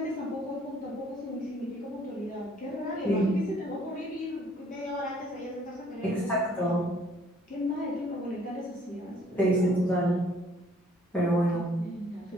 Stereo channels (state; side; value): normal; both; correlation 0.60